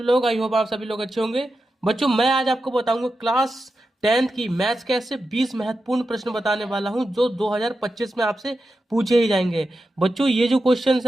लोग। आई होप आप सभी लोग अच्छे होंगे। बच्चों, मैं आज आपको बताऊंगा क्लास 10th की मैथ्स के ऐसे 20 महत्वपूर्ण प्रश्न बताने वाला हूं जो 2025 में आपसे पूछे ही जाएंगे। बच्चों, ये जो क्वेश्चंस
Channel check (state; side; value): normal; both; correlation 0.90